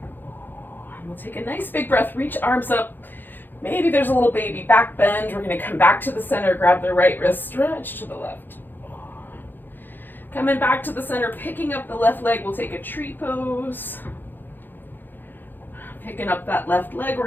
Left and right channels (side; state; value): right; late; 0.092 ms